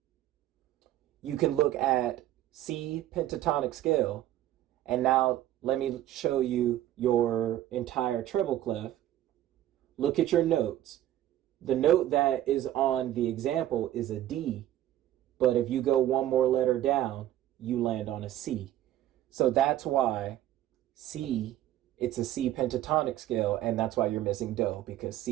you can look at C pentatonic scale, and now let me show you your entire treble clef. Look at your notes. The note that is on the example is a D, but if you go one more letter down, you land on a C. So that's why C, it's a C pentatonic scale, and that's why you're missing Do, because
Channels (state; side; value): quieter; left; 13.2 dB